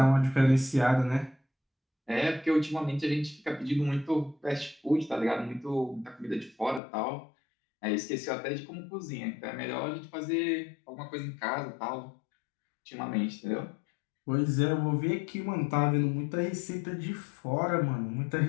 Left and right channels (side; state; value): right; drops out; at 6.8 s